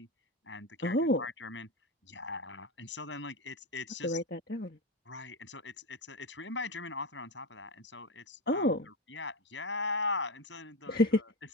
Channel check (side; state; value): both; normal; correlation 0.17